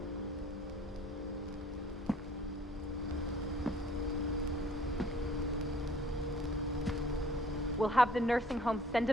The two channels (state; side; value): normal; both; correlation 0.55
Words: We'll have the nursing home send